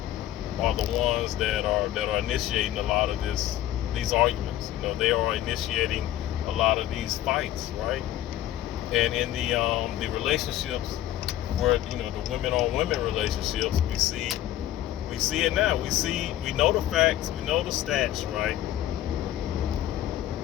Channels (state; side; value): quieter; right; 13.1 dB